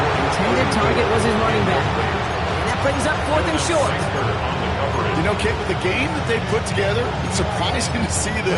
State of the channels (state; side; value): identical; both; correlation 1.00